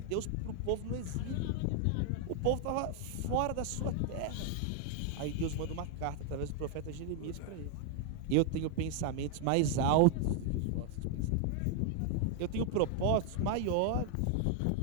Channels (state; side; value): different; both; correlation 0.00